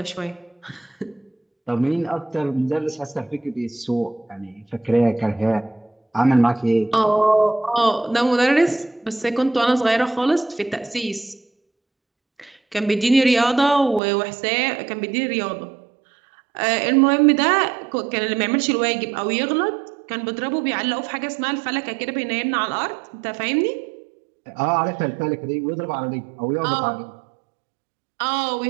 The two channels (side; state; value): left; drops out; at 14.0 s